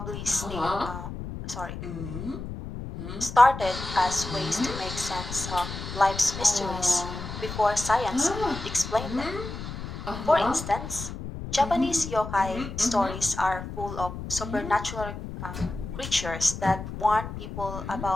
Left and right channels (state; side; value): noise; left; rumble, 8 dB below the sound